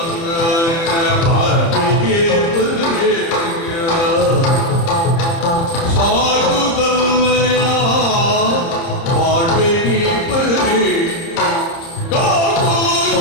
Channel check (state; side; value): late; right; 30 ms